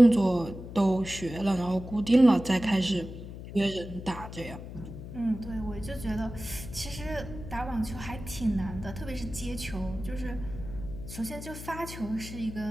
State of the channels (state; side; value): noise; left; hum, 11 dB below the sound